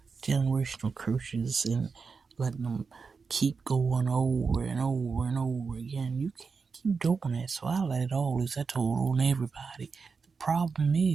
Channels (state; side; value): quieter; left; 5.1 dB